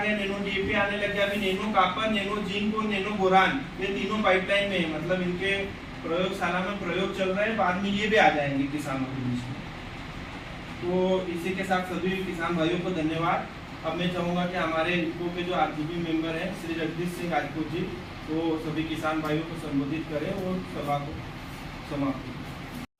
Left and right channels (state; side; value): identical; both; correlation 1.00